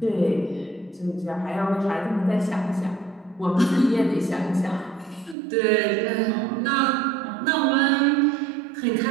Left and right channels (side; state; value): left; drops out; at 5.4 s